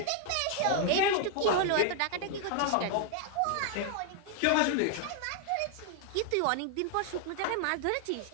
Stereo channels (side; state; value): both; different; correlation 0.00